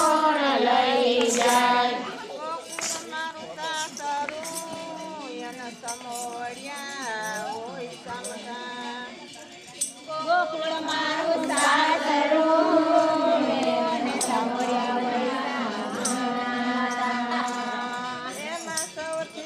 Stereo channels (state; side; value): identical; both; correlation 1.00